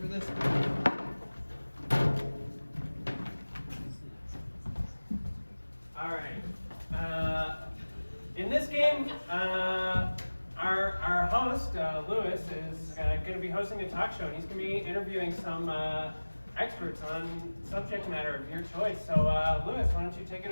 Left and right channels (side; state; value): both; inverted; correlation -1.00